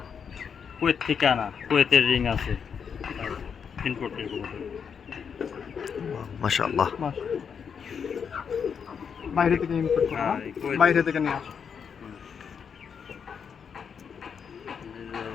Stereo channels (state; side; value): quieter; right; 6.8 dB